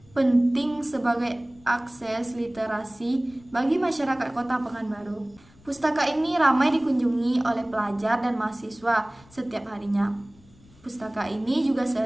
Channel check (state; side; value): noise; left; rumble, 27 dB below the sound